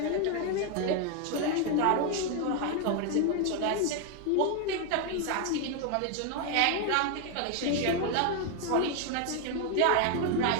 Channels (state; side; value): different; both; correlation 0.01